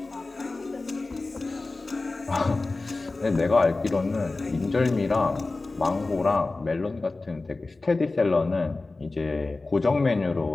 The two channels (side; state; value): right; quieter; 3.4 dB